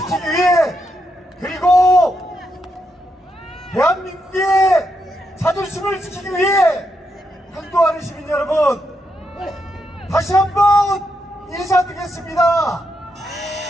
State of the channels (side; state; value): both; normal; correlation 0.81